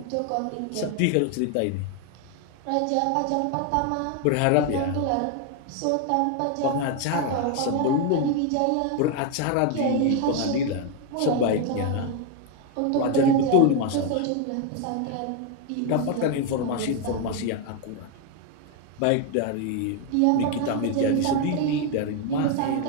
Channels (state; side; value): different; both; correlation 0.01